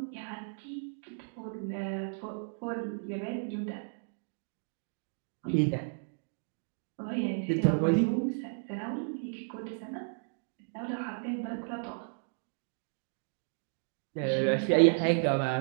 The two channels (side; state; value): left; silent; digital silence